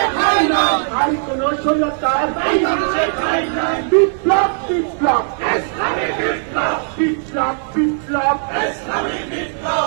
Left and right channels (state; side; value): silent; left; 67 dB below the other